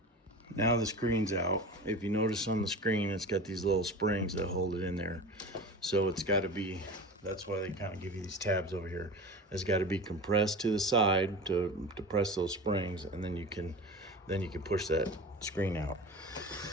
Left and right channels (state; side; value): normal; both; correlation 0.32